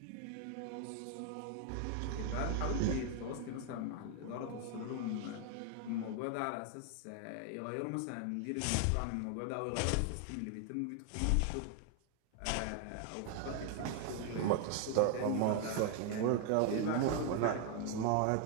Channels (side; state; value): both; different; correlation 0.00